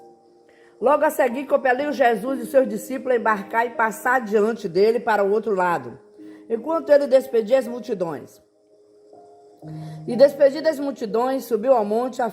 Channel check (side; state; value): both; identical; correlation 1.00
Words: Logo a seguir, compeliu Jesus e seus discípulos a embarcar e passar diante dele para o outro lado, enquanto ele despedia as multidões. E despedidas as multidões, subiu ao monte a